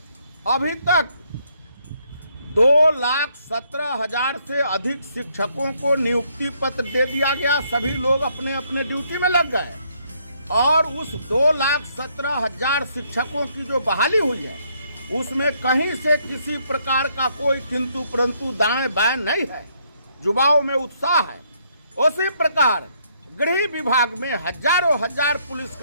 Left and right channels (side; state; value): both; inverted; correlation -0.71